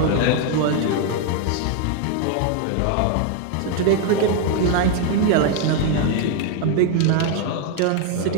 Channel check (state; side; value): different; both; correlation 0.01